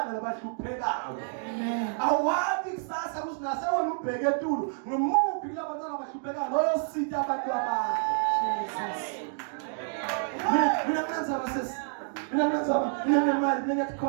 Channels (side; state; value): left; silent; digital silence